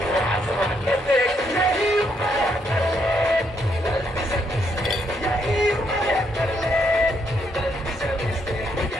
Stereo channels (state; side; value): normal; both; correlation 0.74